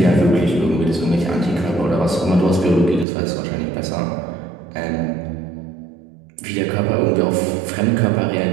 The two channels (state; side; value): drops out; left; at 3.1 s